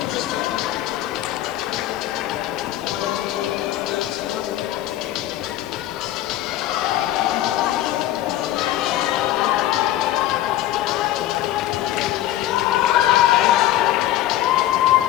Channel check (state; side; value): quieter; right; 13.7 dB